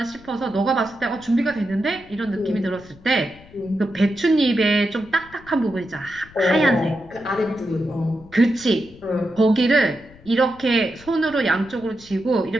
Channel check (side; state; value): left; noise; rumble, 23 dB below the sound